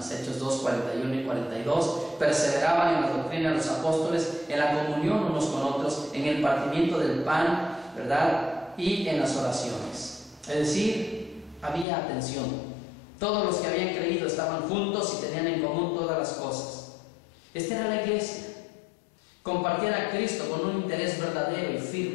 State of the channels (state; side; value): drops out; right; at 11.9 s